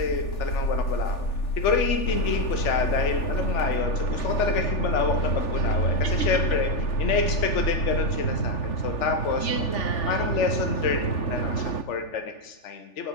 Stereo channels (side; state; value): right; late; 3.4 ms